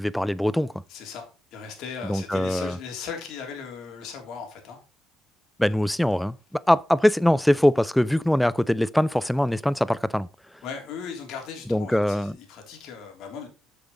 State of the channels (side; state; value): both; normal; correlation 0.97